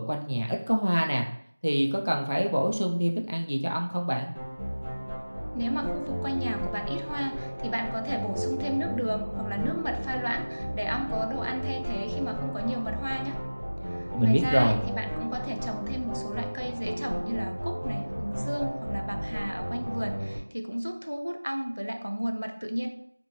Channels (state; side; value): inverted; both; correlation -1.00